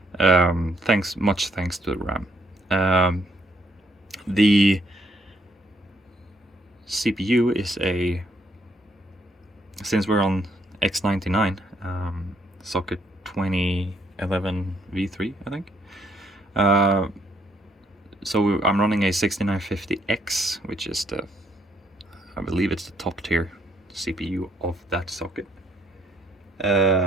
Much thanks to the RAM. The CPU is since we're on X99, socket 2011 V3, I think. So I'm running a 6950X, which is I believe it's the top tier CPU of that socket.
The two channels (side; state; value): both; normal; correlation 0.70